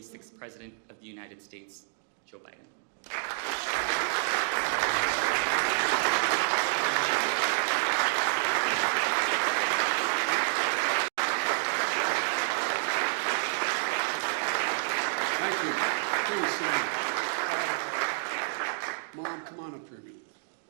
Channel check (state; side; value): silent; left; digital silence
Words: President of the United States, Joe Biden. Thank you. Please sit down. Mom, come on up here a minute.